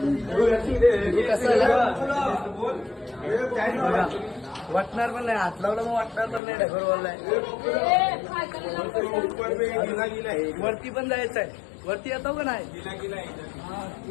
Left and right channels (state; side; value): drops out; right; at 6.4 s